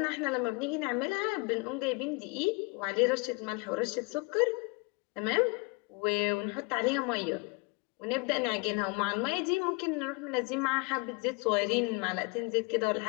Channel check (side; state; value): right; quieter; 30.3 dB